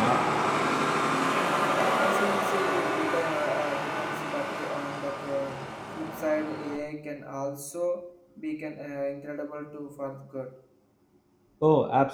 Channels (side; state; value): both; identical; correlation 1.00